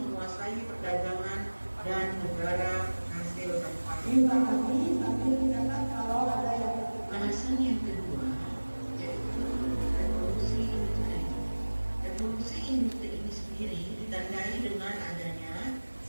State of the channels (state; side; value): inverted; both; correlation -1.00